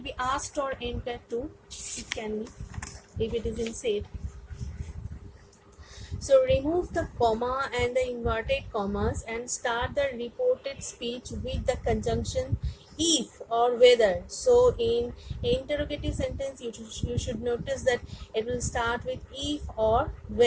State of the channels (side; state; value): both; identical; correlation 1.00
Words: asked or inquired too. It can be if it is in said. So remove the comma and the inverted commas and start the reported speech with the conjunction if or whether. So in interrogative sentence, you should notice that it will start with if or